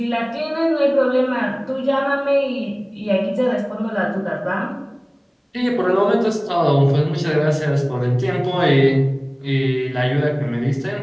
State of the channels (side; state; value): both; identical; correlation 1.00